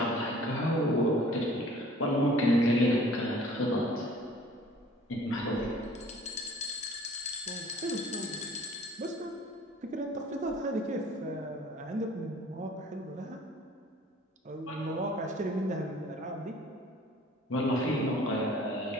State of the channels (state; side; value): normal; both; correlation 0.51